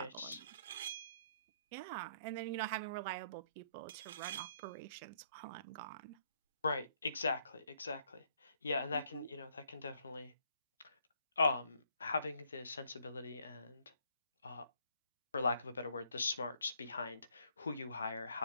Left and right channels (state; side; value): inverted; both; correlation -0.69